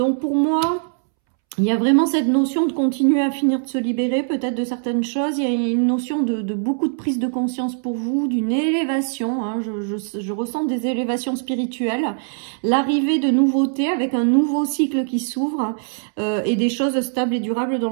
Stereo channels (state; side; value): silent; left; 65 dB below the other